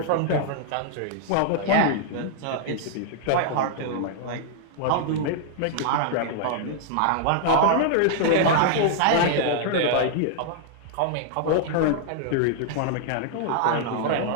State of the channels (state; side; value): different; both; correlation -0.01